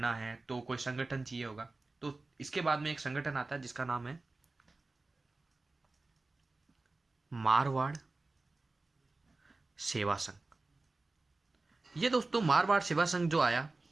है तो कोई संगठन चाहिए होगा, तो इसके बाद में एक संगठन आता है जिसका नाम है मारवाड़ सेवा संघ। ये दोस्तों मारवाड़ सेवा संघ जो आया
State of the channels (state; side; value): quieter; left; 3.3 dB